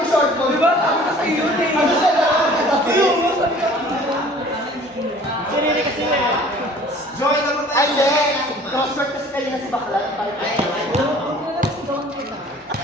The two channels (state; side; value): normal; both; correlation 0.50